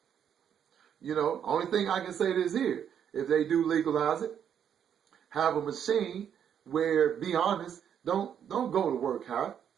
Only thing I can say this here, if they do legalize it, have a machine where, be honest, don't go to work high.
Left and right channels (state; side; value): quieter; left; 8.7 dB